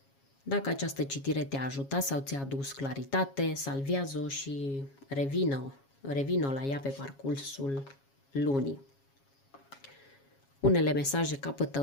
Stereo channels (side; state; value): right; late; 7.3 ms